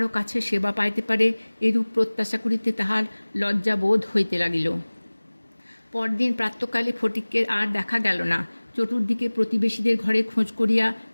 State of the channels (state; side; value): inverted; both; correlation -1.00